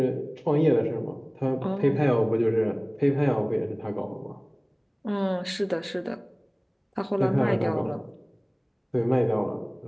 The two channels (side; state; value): both; identical; correlation 1.00